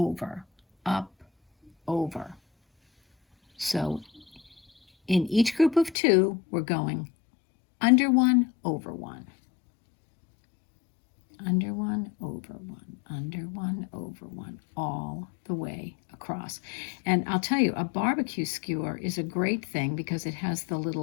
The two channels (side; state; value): right; drops out; at 6.0 s